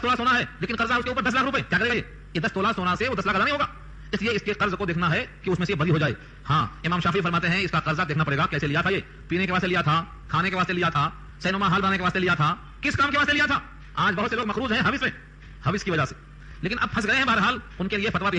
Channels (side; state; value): both; identical; correlation 1.00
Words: تولہ سونا ہے لیکن قرضہ اس کے اوپر 10 لاکھ روپے, کیا کرے گا یہ 10 تولہ سونا سے وہ 10 لاکھ ادا نہیں ہوگا, اس لیے اس کے قرض کو دیکھنا ہے کہ اس میں سے بری ہو جائے. ہاں امام شافعی فرماتے ہیں اس کا قرضہ دیکھنا پڑے گا کیسے لیا تھا, یہ پینے کے واسطے لیا تھا, کھانے کے واسطے لیا تھا, سینما ہال بنانے کے واسطے لیا تھا, کس کام کے واسطے لیا تھا. آج بہت سے لوگ مقروض ہیں حوث میں, حوث کی وجہ سے, لیکن اب پھنس گئے ہیں. بہرحال ان کے لیے فتویٰ